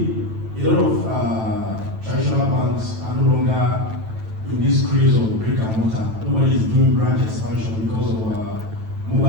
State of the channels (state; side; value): late; left; 9.1 ms